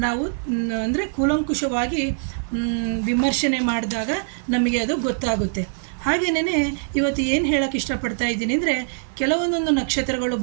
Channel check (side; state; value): left; silent; digital silence